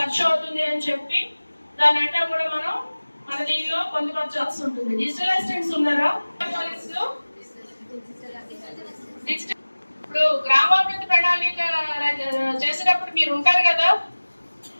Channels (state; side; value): inverted; both; correlation -1.00